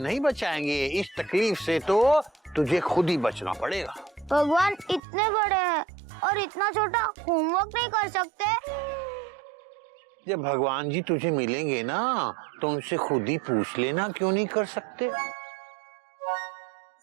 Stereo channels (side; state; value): left; drops out; at 5.0 s